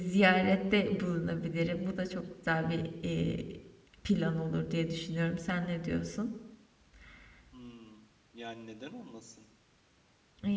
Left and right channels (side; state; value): both; identical; correlation 1.00